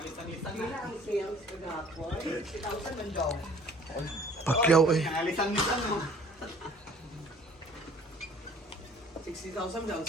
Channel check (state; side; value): normal; both; correlation 0.53